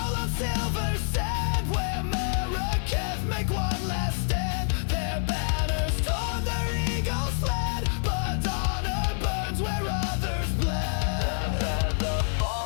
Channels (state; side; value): silent; right; 60 dB below the other